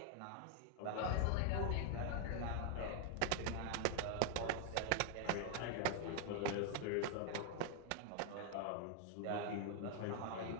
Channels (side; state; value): both; different; correlation 0.00